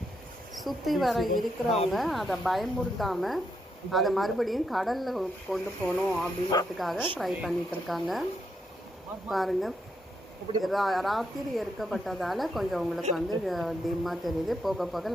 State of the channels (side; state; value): both; normal; correlation 0.79